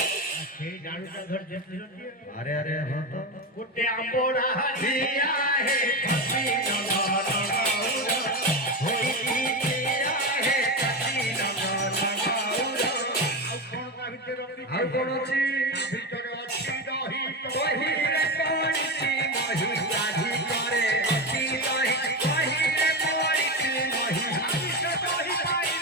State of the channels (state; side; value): normal; both; correlation 0.17